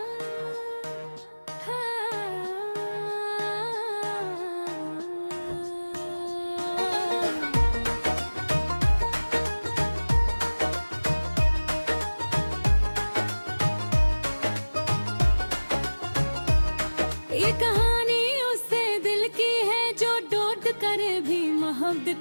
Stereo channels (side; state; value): both; inverted; correlation -1.00